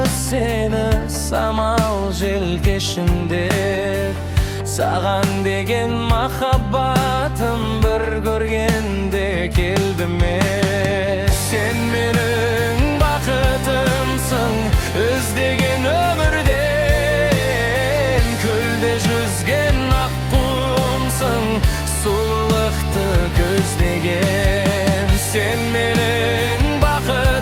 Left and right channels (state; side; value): identical; both; correlation 1.00